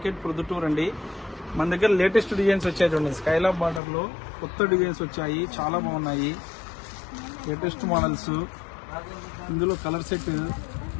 Proddatur అండి. మన దగ్గర లేటెస్ట్ డిజైన్స్ వచ్చాయి చూడండి. స్కైలాబ్ బార్డర్ లో కొత్త డిజైన్స్ వచ్చాయి, చాలా బాగున్నాయి. లేటెస్ట్ మోడల్స్, ఇందులో కలర్ సెట్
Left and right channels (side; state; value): right; drops out; at 3.8 s